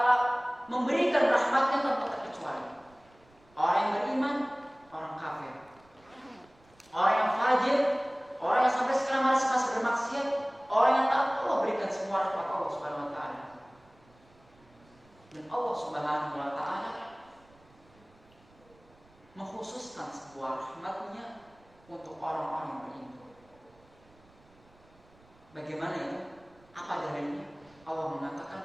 memberikan rahmatnya tanpa terkecuali. Orang yang beriman, orang kafir, orang yang fajir, orang yang sampai sekarang masih bermaksiat, orang yang taat, Allah berikan semua rahmat Allah Subhanahu wa taala. Dan Allah Subhanahu wa taala mengkhususkan sebuah rahmatnya untuk orang-orang yang beriman. Bagaimana itu? Apa dalilnya? Allah mengatakan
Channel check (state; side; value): noise; right; rumble, 29 dB below the sound